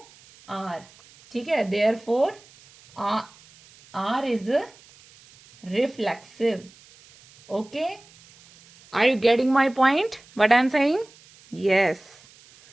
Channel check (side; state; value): right; noise; hiss, 26 dB below the sound